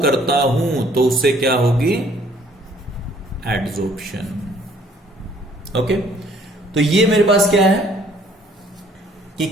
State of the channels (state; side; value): normal; both; correlation 0.59